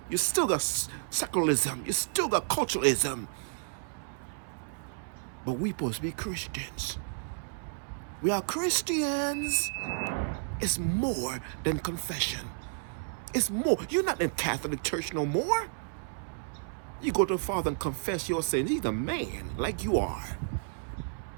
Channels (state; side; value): silent; left; 57 dB below the other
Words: You still got secularism. You still got culturalism. But we supposed to be Christians. We are Christians. It's more than confession. It's more. You're not in Catholic Church no more. You go to the Father and confess your sins. He's a man like you are.